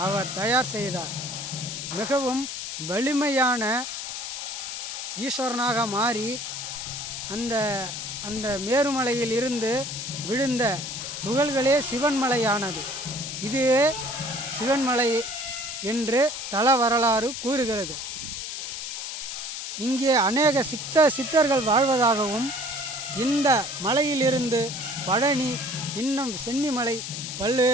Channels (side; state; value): left; noise; hiss, 6 dB below the sound